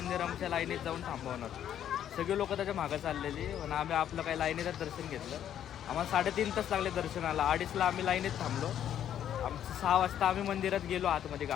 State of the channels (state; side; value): quieter; right; 10.2 dB